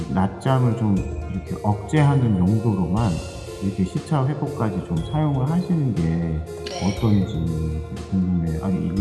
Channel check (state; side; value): identical; both; correlation 1.00